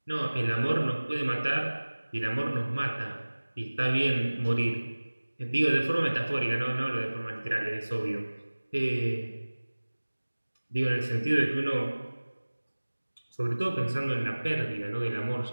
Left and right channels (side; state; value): both; inverted; correlation -1.00